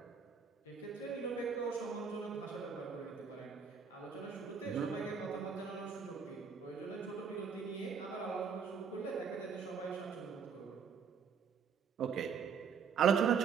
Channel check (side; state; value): left; quieter; 6.4 dB